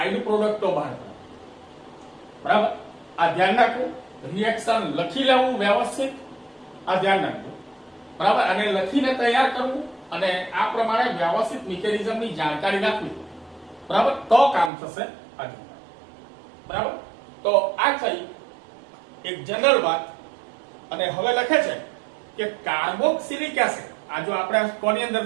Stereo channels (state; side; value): drops out; left; at 14.7 s